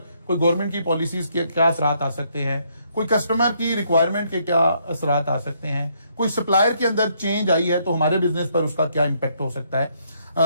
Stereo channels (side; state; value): both; inverted; correlation -0.72